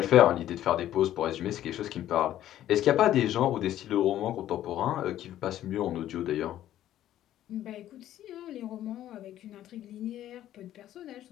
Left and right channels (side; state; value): right; quieter; 12.5 dB